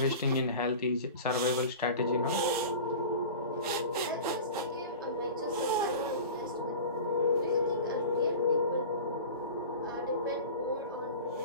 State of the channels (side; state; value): both; inverted; correlation -0.34